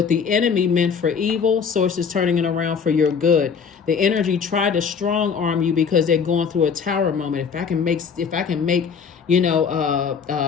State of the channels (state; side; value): quieter; right; 6.3 dB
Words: the enemy meant for evil, source is turning it around for your good. The energy tried to strong arm you because they're going through a tower moment. If I can make